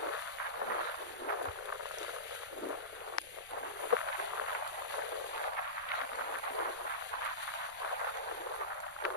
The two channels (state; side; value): noise; left; rumble, 25 dB below the sound